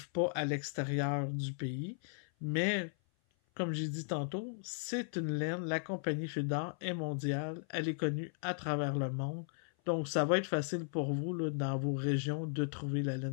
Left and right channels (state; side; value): silent; right; 54 dB below the other